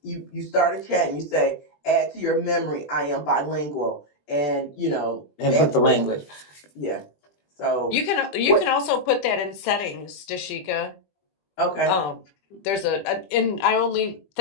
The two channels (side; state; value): right; late; 20 ms